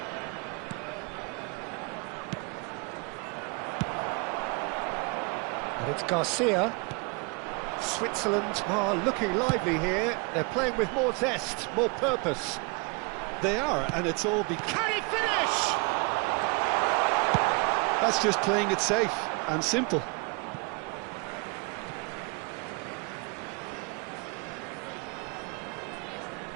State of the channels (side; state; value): left; quieter; 31.1 dB